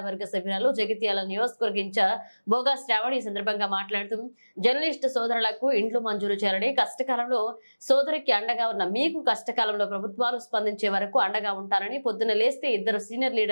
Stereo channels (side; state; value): both; inverted; correlation -1.00